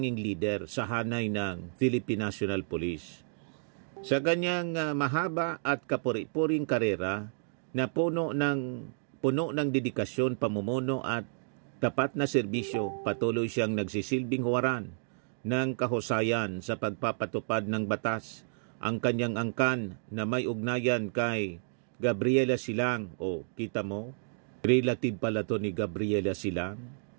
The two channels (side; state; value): left; silent; digital silence